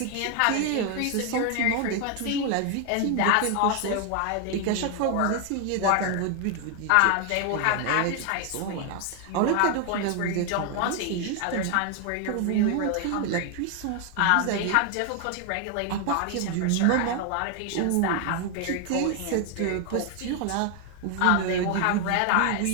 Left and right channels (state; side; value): different; both; correlation 0.00